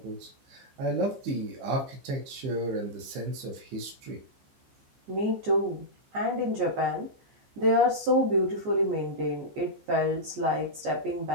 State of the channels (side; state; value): left; late; 14 ms